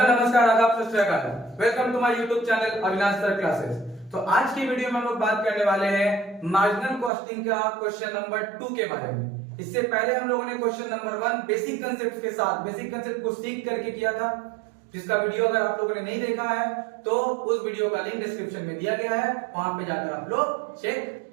नमस्कार आदाब सत श्री अकाल। Welcome to my YouTube channel Avinash sir classes. तो आज की वीडियो में हम लोग बात करने वाले हैं मार्जिनल कॉस्टिंग का क्वेश्चन नंबर 2 के बारे में। इससे पहले हम लोगों ने क्वेश्चन नंबर 1 बेसिक कंसेप्ट के साथ बेसिक कंसेप्ट को सीख करके किया था, जिसका वीडियो अगर आप लोगों ने नहीं देखा है तो उस वीडियो का लिंक डिस्क्रिप्शन में दिया गया है, वहां पे जाकर आप लोग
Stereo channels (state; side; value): drops out; left; at 7.1 s